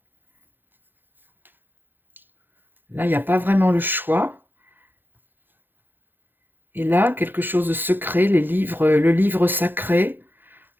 Là, il n'y a pas vraiment le choix. Et là, quelque chose de secret, les livres, le livre sacré.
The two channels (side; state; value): left; late; 0.095 ms